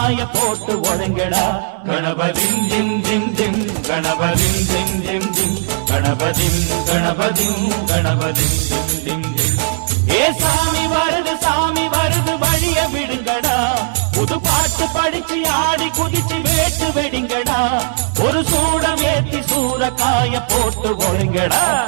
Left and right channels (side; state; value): left; silent; digital silence